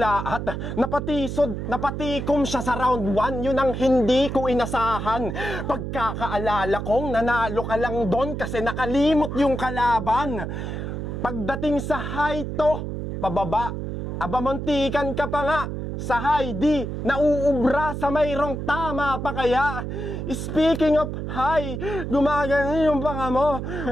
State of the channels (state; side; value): noise; right; hum, 5 dB below the sound